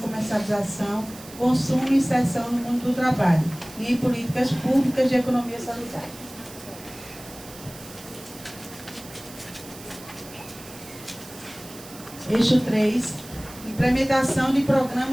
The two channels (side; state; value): right; noise; hiss, 17 dB below the sound